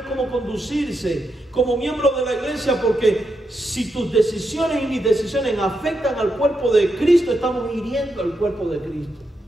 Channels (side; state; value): both; normal; correlation 0.84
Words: cómo conducirse como miembro de la iglesia, porque si tus decisiones y mis decisiones afectan al cuerpo de Cristo, estamos hiriendo al cuerpo de Cristo.